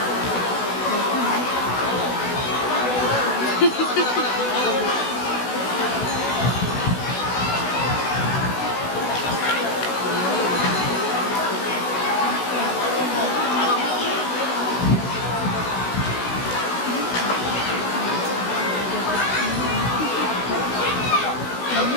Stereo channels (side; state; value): right; late; 16 ms